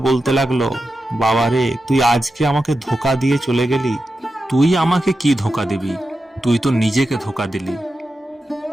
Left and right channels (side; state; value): both; normal; correlation 0.90